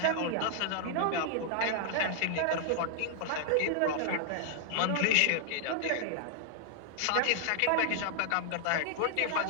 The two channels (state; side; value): different; both; correlation -0.01